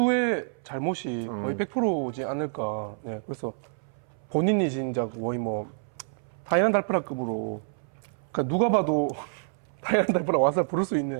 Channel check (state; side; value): silent; left; 59 dB below the other